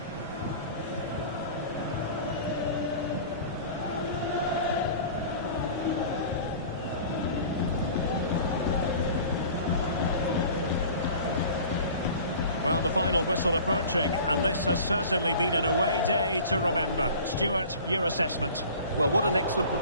Well, the final whistle approaching, and this has certainly been an away day to remember. Stuart, your assessment? Well, what an excellent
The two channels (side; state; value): both; inverted; correlation -0.43